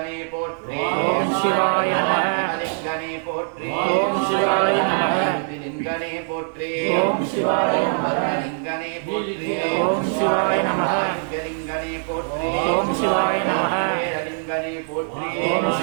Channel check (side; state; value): left; silent; digital silence